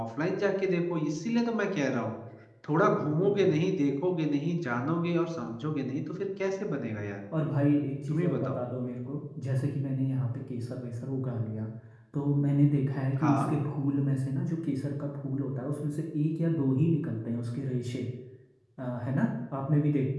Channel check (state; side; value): identical; both; correlation 1.00